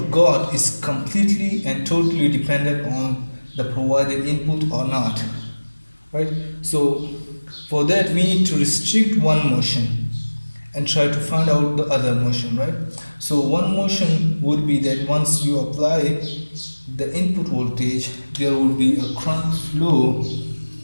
got is completely and totally dependent on the provided input or not, right? So for that we need to restrict one motion and try to find out the other motion, right? So one motion would be that once you apply the input voltage, there will be a current flow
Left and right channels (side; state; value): both; inverted; correlation -1.00